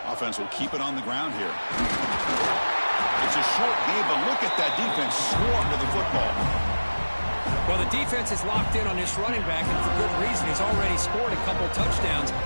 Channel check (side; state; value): both; inverted; correlation -1.00